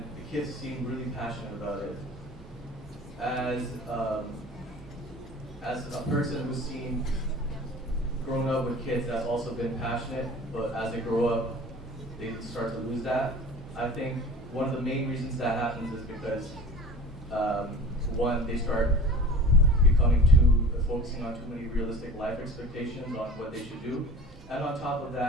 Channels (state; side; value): normal; both; correlation 0.41